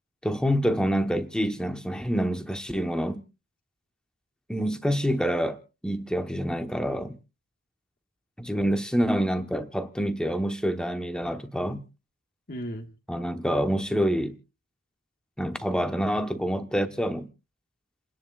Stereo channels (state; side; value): normal; both; correlation 0.92